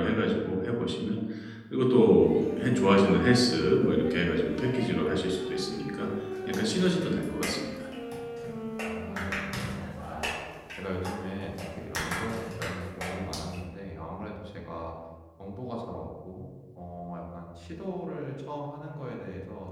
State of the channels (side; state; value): both; identical; correlation 1.00